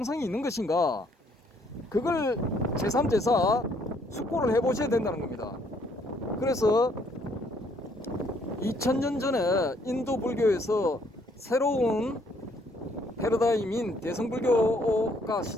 있는 것인가, 그걸 제3, 제4 숙고를 해보셔야 된다는 겁니다. 그래서 2000년 전에 인도 불교에서 새로운 패러다임인 대성불교가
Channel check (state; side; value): normal; both; correlation 0.66